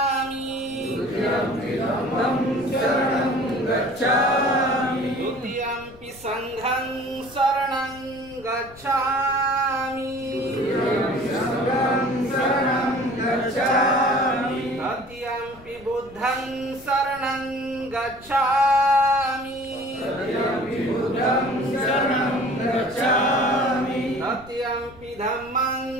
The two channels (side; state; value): left; noise; rumble, 21 dB below the sound